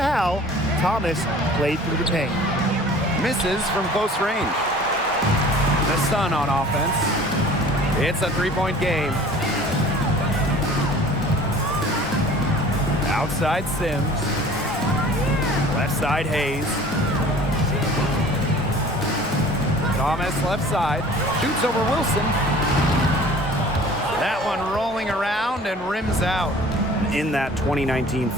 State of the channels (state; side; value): normal; both; correlation 0.47